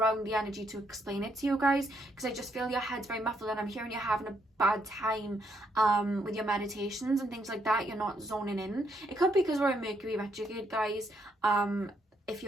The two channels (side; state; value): both; normal; correlation 0.75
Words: the energy to explain it to you guys, because I just feel your head's very muffled, and I'm hearing you're having a bad time with your meditations and things like that. You're not zoning in. It could be because we're in Mercury retrograde, guys. If